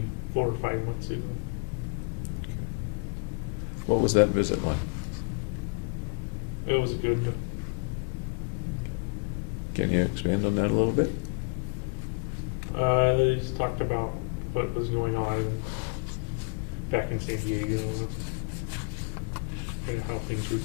4 or 5 months ago. What was that visit like? It was good. Can you expand on that a little bit? They just talked about what was going on back in San Diego and how things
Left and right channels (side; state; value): right; quieter; 38.5 dB